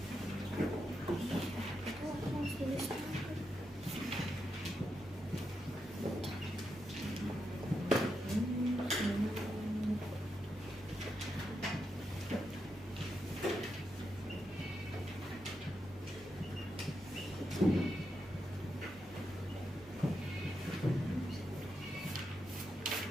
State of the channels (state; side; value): normal; both; correlation 0.84